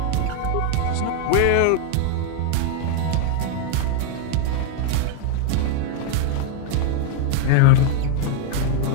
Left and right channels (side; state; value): both; different; correlation 0.00